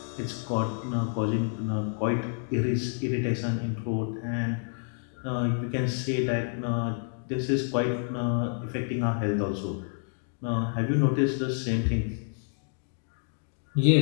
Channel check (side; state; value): right; silent; 59 dB below the other